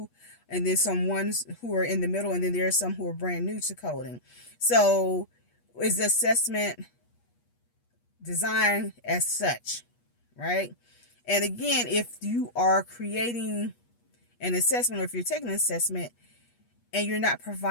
and then some ones who are in the middle, and then there are some who are brand new to coding. So is the assessment designed as such, right? And again, if you are creating an assessment, or if you're taking an assessment and you're not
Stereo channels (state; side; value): late; right; 8.3 ms